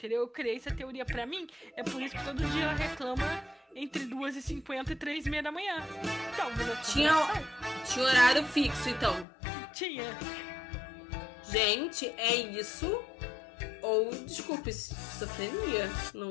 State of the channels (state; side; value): drops out; right; at 9.2 s